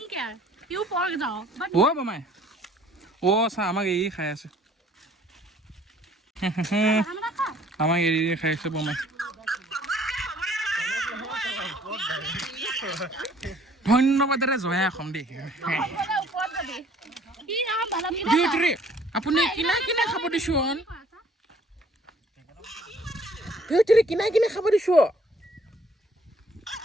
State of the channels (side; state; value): both; normal; correlation 0.58